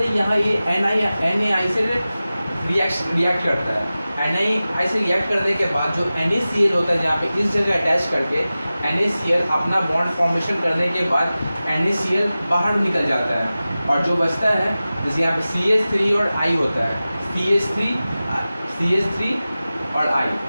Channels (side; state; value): both; inverted; correlation -0.96